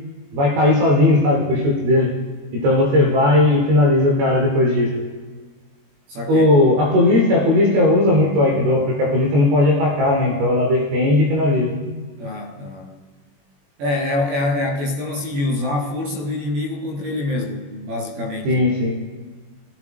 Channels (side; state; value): left; late; 21 ms